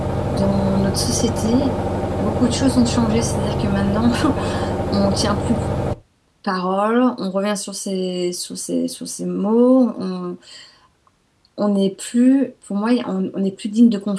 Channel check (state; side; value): identical; both; correlation 1.00